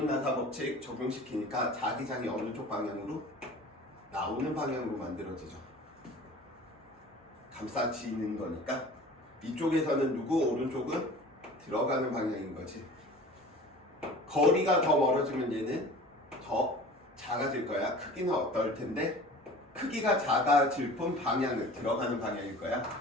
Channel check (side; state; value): both; normal; correlation 0.42